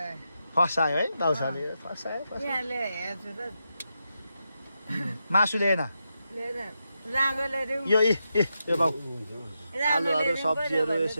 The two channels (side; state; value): both; inverted; correlation -0.86